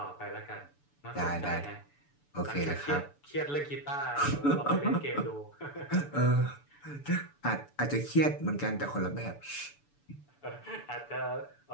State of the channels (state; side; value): late; right; 6.9 ms